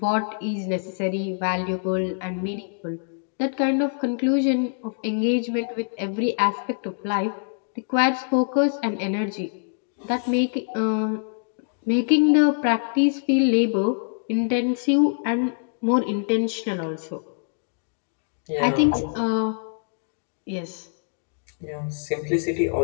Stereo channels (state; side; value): silent; right; digital silence